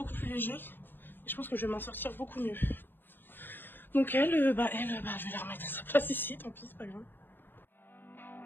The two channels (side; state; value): right; late; 0.095 ms